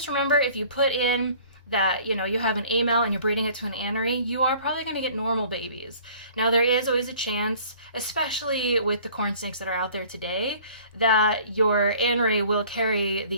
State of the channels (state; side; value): inverted; both; correlation -0.51